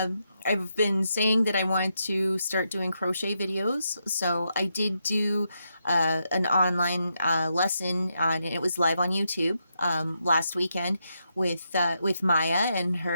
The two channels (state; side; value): inverted; both; correlation -0.82